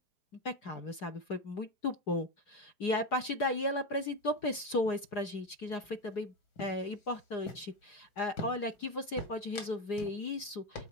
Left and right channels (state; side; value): late; right; 4.8 ms